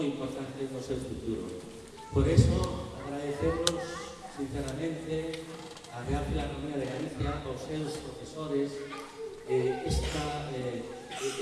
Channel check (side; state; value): both; identical; correlation 1.00